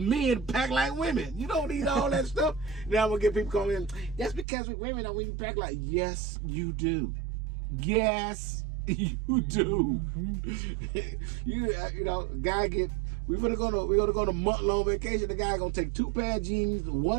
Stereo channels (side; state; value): left; drops out; at 4.5 s